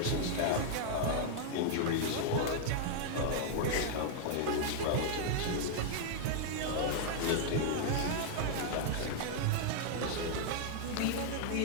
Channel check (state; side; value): different; both; correlation -0.01